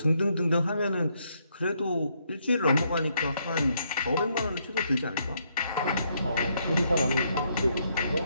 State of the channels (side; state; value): both; inverted; correlation -0.75